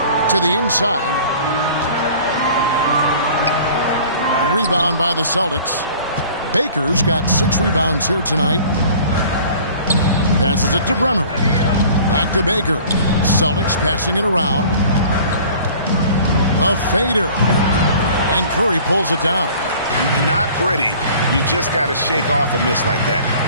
to the inside. Rebound by the Celtics. Baker's got 6 rebounds here tonight. Passes it to Bremer. Back to Baker. Celtics passing it around. The fader. And Curry pulls it down. Not pretty. You just got to shake off a miss like that.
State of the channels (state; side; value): inverted; both; correlation -0.48